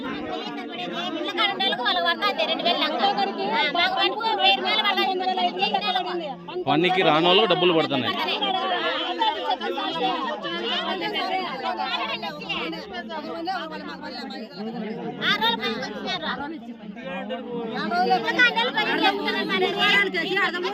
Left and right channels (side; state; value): both; identical; correlation 1.00